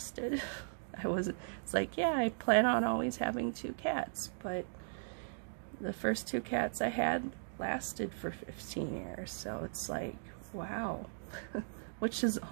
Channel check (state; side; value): silent; left; digital silence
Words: It's like, yeah, I plan on always having 2 cats, but the first 2 cats I had lasted for 15 years, so it's like, wow, which is